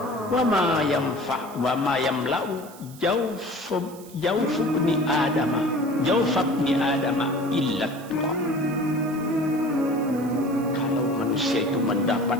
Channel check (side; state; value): right; noise; hiss, 20 dB below the sound